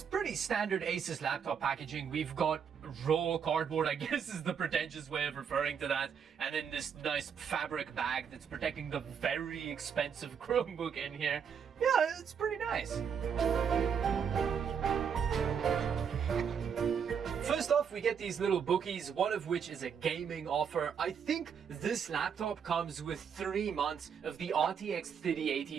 pretty standard Asus laptop packaging. We've got raw cardboard, I guess is the pretentious way of referring to that, and then this nice fabric bag that's protecting the very expensive Chromebook in here. Yeah, it's pretty nice. First off, we get these little bookies, one of which is a gaming offer. I think this laptop comes with 3 months of the RTX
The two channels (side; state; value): left; quieter; 7.2 dB